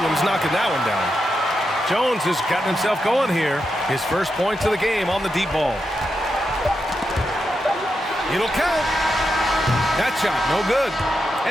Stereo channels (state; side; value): normal; both; correlation 0.86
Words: knocking that one down. Jones has gotten himself going here. His first points of the game on the deep ball. It'll count. That shot, no good.